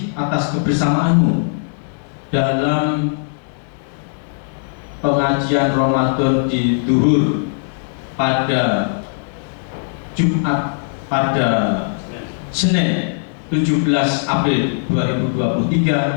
atas kebersamaanmu dalam pengajian Ramadan di Duhur pada Jumat pada Senin 17 April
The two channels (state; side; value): silent; right; digital silence